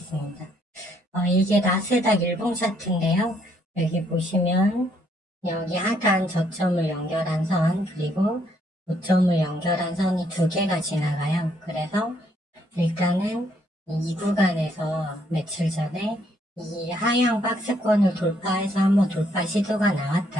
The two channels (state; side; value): normal; both; correlation 0.70